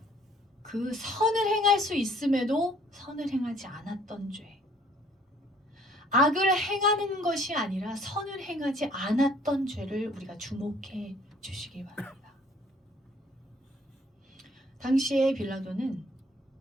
그 선을 행할 수 있음에도 선을 행하지 않았던 죄, 악을 행하는 것이 아니라 선을 행하지 않았던 죄를 우리가 주목해 주시기 바랍니다. 당시에 빌라도는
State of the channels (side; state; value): both; normal; correlation 0.59